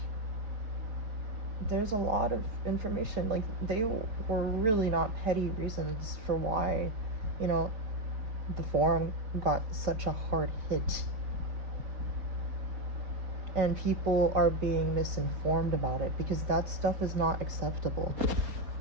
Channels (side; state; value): left; late; 4.6 ms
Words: there's a lot of information. Like, they were really not petty reasons for why, you know, the forum got such a hard hit. And people are being misinformed about it, because that stuff is not acceptable.